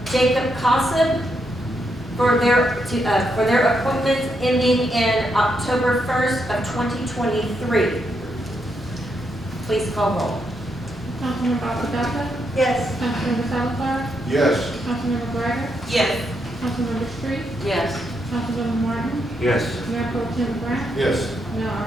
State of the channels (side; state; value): both; normal; correlation 0.80